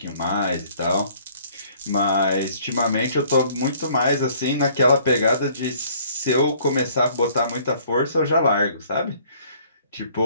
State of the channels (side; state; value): both; inverted; correlation -0.58